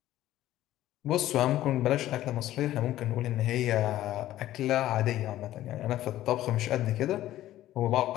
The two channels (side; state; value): right; quieter; 14.0 dB